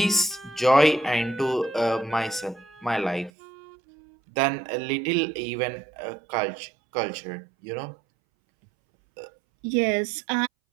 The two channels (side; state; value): left; drops out; at 3.3 s